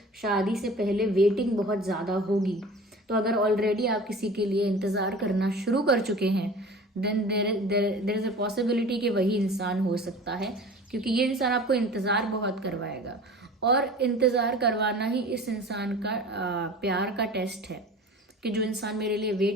शादी से पहले वेटिंग बहुत ज़्यादा होगी। तो अगर ऑलरेडी आप किसी के लिए इंतज़ार करना शुरू कर चुके हैं, then there is a possibility कि वही इंसान हो सकता है, क्योंकि ये इंसान आपको इंतज़ार बहुत करवाएगा और इंतज़ार करवाना ही इस इंसान का प्यार का टेस्ट है, कि जो इंसान मेरे लिए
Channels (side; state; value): both; normal; correlation 0.40